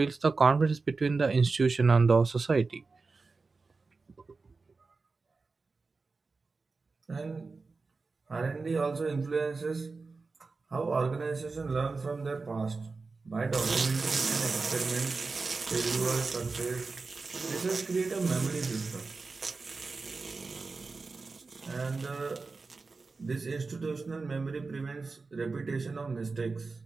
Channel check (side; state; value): left; quieter; 4.1 dB